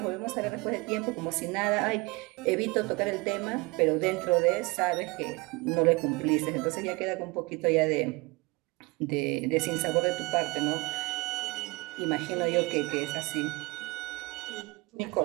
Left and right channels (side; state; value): left; quieter; 25.1 dB